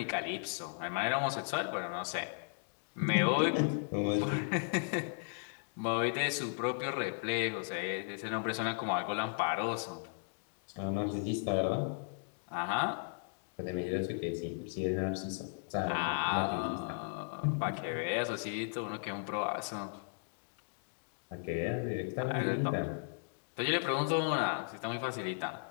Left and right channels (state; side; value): silent; right; digital silence